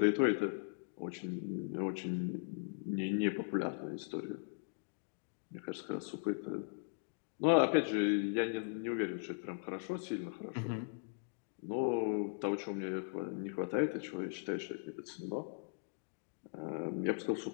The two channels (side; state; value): right; silent; digital silence